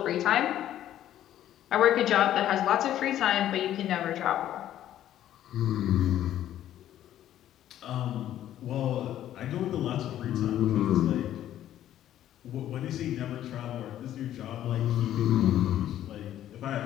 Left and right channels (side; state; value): right; quieter; 12.0 dB